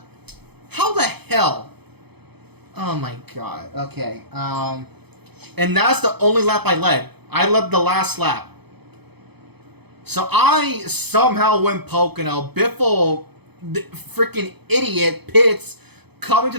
hell? Oh my god. Okay. And that's the only lap I led. I led the last lap. So I somehow win Pocono. Biffle, the freaking idiot, pits, coming to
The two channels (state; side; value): late; left; 0.98 ms